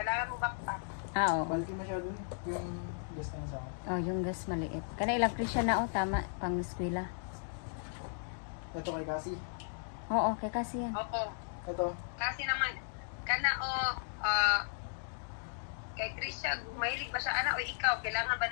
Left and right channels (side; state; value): right; silent; digital silence